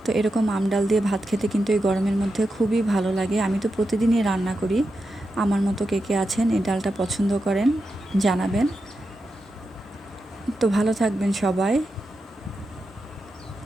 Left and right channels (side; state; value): both; normal; correlation 0.88